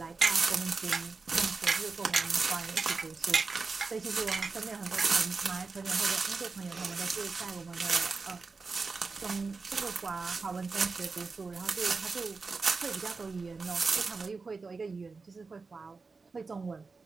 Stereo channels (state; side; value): quieter; left; 4.3 dB